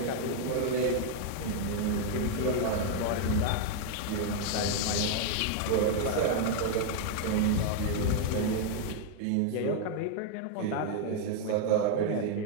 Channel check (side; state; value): both; different; correlation 0.00